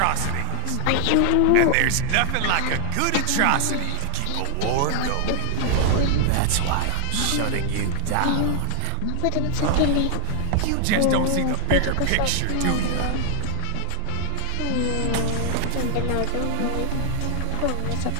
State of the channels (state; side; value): different; both; correlation 0.01